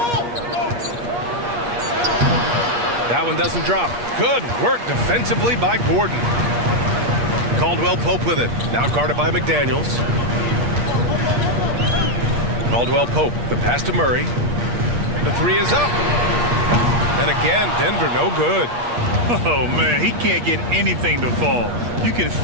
That one doesn't drop. Good work defensively by Gordon. Caldwell Pope with it. Now guarded by McDaniels. Caldwell Pope, the pass to Murray. The three is up. And again, Denver no good. Oh, man, he can't get anything to fall. You can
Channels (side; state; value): left; late; 8.4 ms